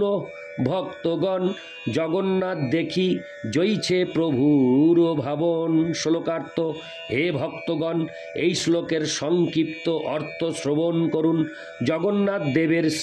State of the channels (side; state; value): both; identical; correlation 1.00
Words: ভক্তগণ। জগন্নাথ দেখি জইছে প্রভুর ভাবন। শ্লোকার্থ: হে ভক্তগণ, এই শ্লোকের সংক্ষিপ্ত অর্থ শ্রবণ করুন। জগন্নাথ দেবের